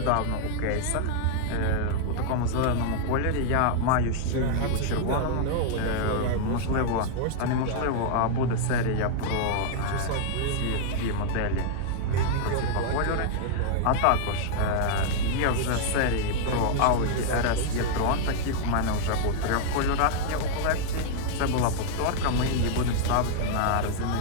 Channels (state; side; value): different; both; correlation -0.01